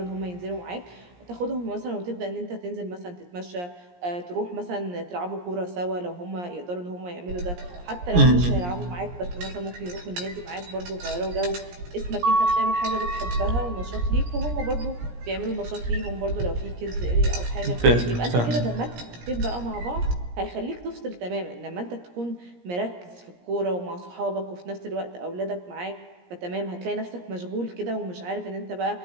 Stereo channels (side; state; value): left; late; 17 ms